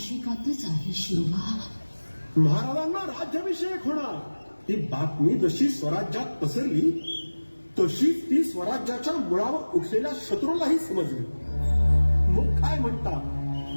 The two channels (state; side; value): inverted; both; correlation -1.00